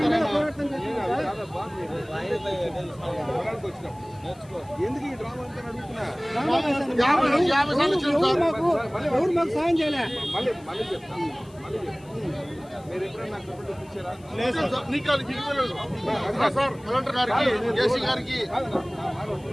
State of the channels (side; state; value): left; noise; hiss, 27 dB below the sound